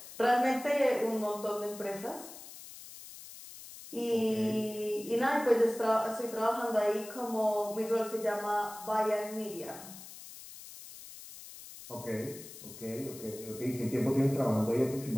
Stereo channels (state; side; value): noise; left; hiss, 15 dB below the sound